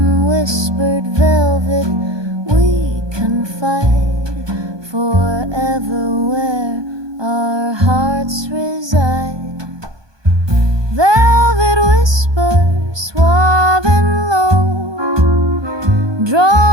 whispered velvet we confide, forever where our hearts reside. Velvet whispers, suave and low,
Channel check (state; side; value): late; left; 1.2 ms